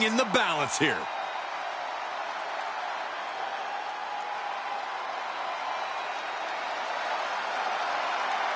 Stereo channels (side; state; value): both; identical; correlation 1.00